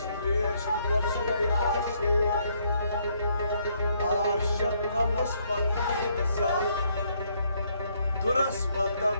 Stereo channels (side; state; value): both; inverted; correlation -0.70